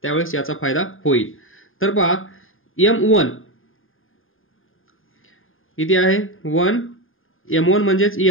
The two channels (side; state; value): right; late; 0.59 ms